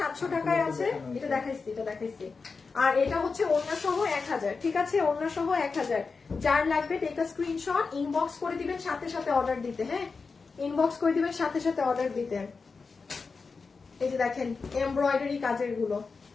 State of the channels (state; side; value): quieter; right; 4.6 dB